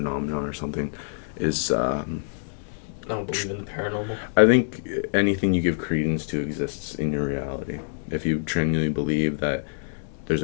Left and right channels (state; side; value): silent; right; 61 dB below the other